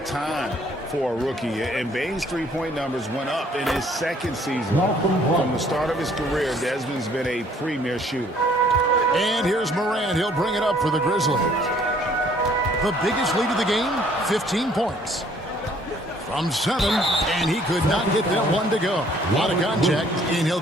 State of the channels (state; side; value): normal; both; correlation 0.61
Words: time for a rookie. And Bain's three-point numbers went up in his second season. From the start of his career, Desmond's been a premier shooter. And here's Morant. He'll bring it up for the Grizzlies. The biggest lead of the game, 15 points. From 7, and he could not get that one to go. A lot of contact, and he'll